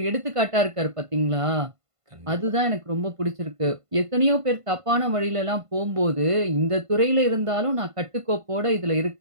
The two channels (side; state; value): left; late; 1.5 ms